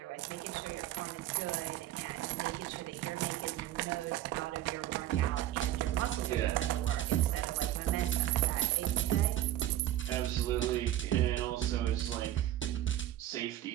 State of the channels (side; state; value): left; quieter; 13.3 dB